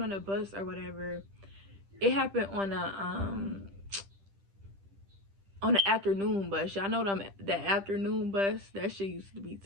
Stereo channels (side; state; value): left; late; 10 ms